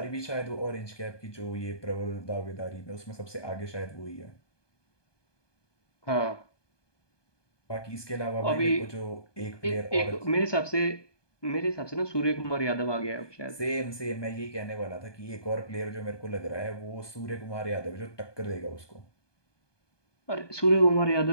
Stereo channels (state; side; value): late; right; 1.2 ms